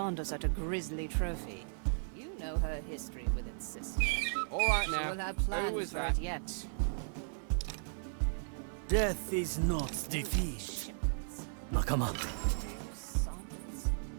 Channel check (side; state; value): left; silent; 54 dB below the other